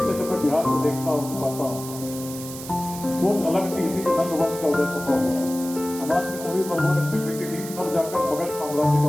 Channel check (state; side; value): noise; right; hiss, 12 dB below the sound